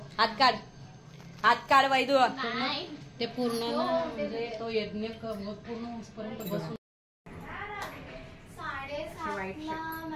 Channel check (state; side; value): identical; both; correlation 1.00